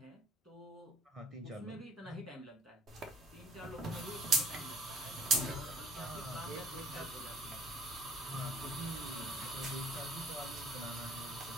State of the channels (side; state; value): both; normal; correlation 0.57